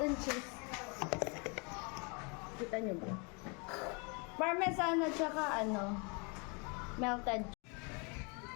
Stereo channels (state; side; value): quieter; right; 33.1 dB